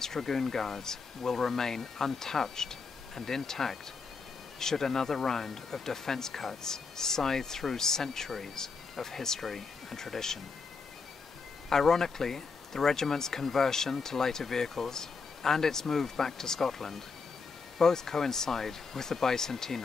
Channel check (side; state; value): right; quieter; 4.8 dB